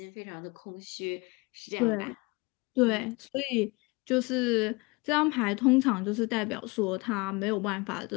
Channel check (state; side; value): quieter; right; 26.8 dB